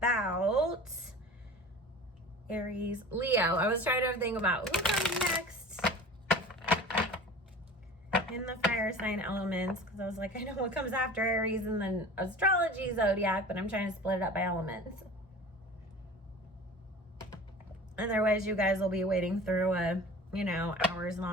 Aries, Leo. I was trying to think about who comes next in the fire sign elements, because I was like, I know what comes after Aries and then astrology zodiac, but I'm trying to split it up by elements. Otherwise, you guys will be waiting through a, you know,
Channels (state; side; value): normal; both; correlation 0.39